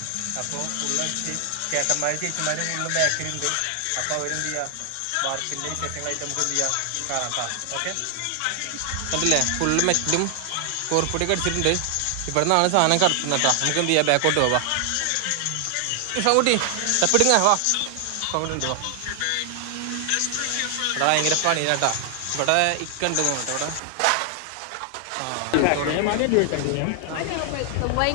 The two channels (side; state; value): both; different; correlation 0.00